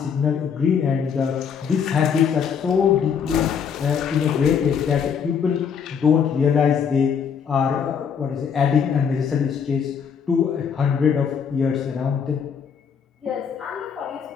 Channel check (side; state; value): right; quieter; 7.0 dB